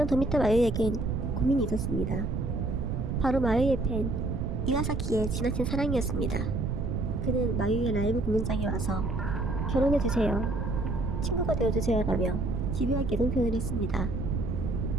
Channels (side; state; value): right; noise; rumble, 1 dB below the sound